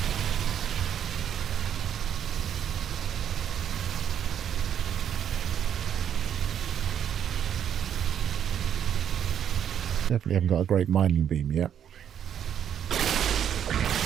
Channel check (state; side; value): quieter; left; 9.2 dB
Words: Definitely haven't got a great mining beam yet.